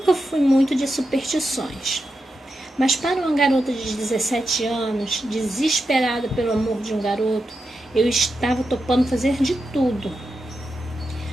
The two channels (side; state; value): both; normal; correlation 0.88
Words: fui muito de superstições, mas para uma garota de 17 anos, desesperada pelo amor de um garoto, eu estava topando fazer de tudo.